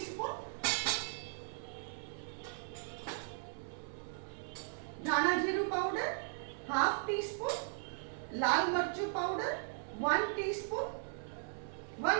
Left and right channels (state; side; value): silent; left; digital silence